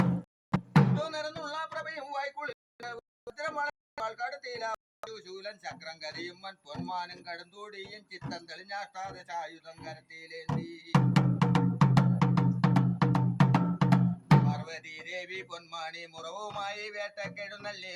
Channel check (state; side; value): identical; both; correlation 1.00